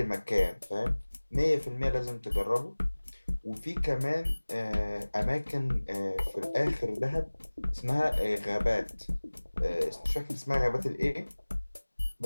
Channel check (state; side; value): inverted; both; correlation -1.00